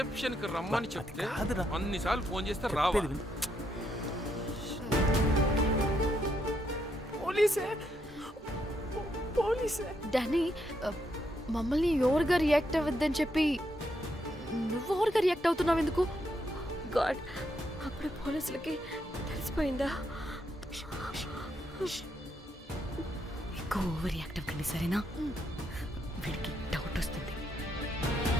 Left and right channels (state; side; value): normal; both; correlation 0.78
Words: కి రమ్మని చెప్తే అన్నిసార్లు ఫోన్ చేస్తే రావా? పోలీసే. డానీ, మమ్మల్ని ఓవర్గా రియాక్ట్ అవ్వద్దని చెప్పి నువ్వు ఓవర్గా రియాక్ట్ అవుతున్నావు ఎందుకు? గాడ్, అప్పుడు పోలీసులకి తెలిసిపోయిందా? ఎక్కువ ఓవర్ రియాక్ట్ అవ్వకండి, సరేనా? వీడికి డౌట్ వస్తుంది.